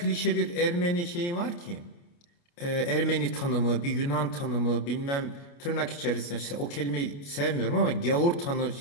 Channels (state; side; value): late; right; 29 ms